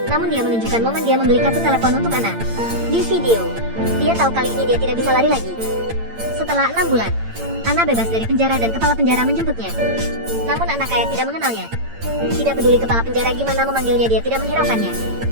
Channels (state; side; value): late; left; 8.8 ms